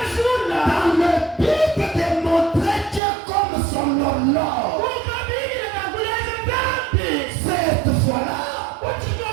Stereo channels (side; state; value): left; drops out; at 3.0 s